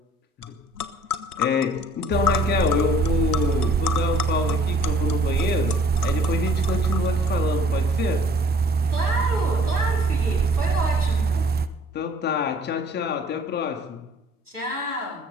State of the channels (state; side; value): normal; both; correlation 0.55